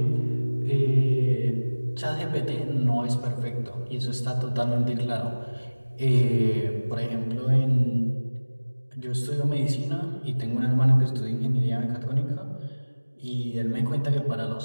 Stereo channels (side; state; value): both; inverted; correlation -1.00